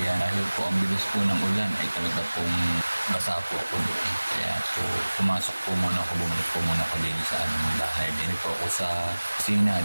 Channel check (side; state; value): both; inverted; correlation -1.00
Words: Dahil po ang bilis po ng ulan ay talaga pong basa po ako doon. Kaya po pumasok po muna ako. Bumalik po muna ako din sa aming bahay. Din po ako sa din